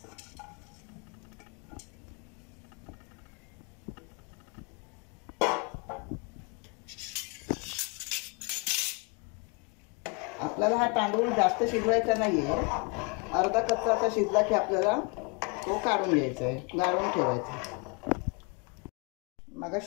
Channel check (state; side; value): quieter; right; 31.9 dB